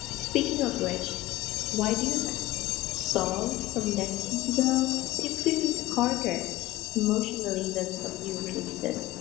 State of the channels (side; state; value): right; quieter; 17.2 dB